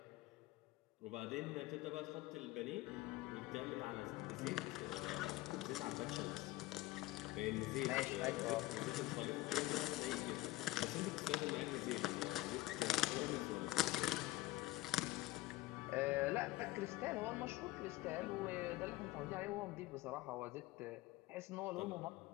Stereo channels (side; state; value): right; quieter; 18.0 dB